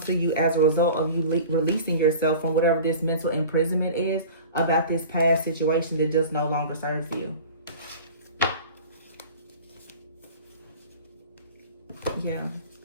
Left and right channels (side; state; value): both; inverted; correlation -0.39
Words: to you as a result of you releasing yourself from whatever this mental imprisonment is about this past situation that just no longer serves you. Yeah.